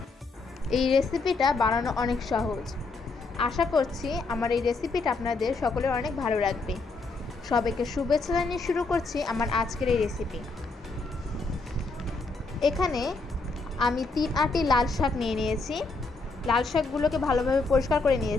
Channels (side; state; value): right; quieter; 3.9 dB